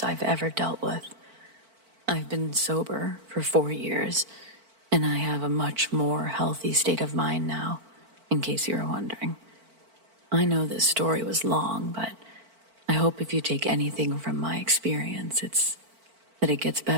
I've ever dealt with. I've been sober for 4 years, and I have a much more healthy state of mind now, in case you were wondering. I know this story was long, but I hope if you take anything from my experience, it's that it gets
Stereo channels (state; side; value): late; left; 4.5 ms